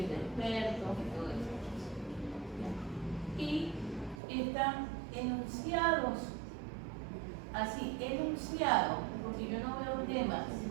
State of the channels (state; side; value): drops out; left; at 4.2 s